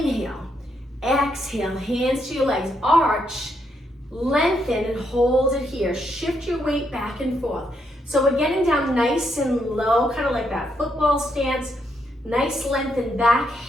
exhale, hands to your legs, arch, lengthen, and hold it here. Shift your weight back and forth. So we're getting down nice and low, kind of like that football stance. Nice lengthen back,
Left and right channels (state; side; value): normal; both; correlation 0.78